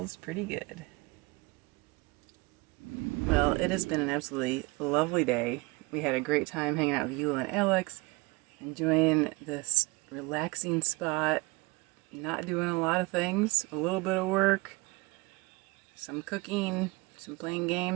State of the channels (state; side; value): quieter; left; 24.4 dB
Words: pretty good. Well, it has been an absolutely lovely day. We had a great time hanging out with Eula and Alex, enjoying this relaxing spot, not doing a lot of things, a little bit of work, some cooking, some playing